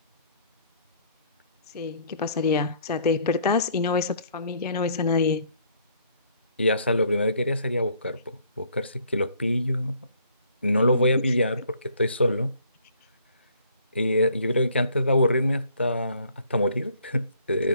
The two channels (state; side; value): inverted; both; correlation -0.62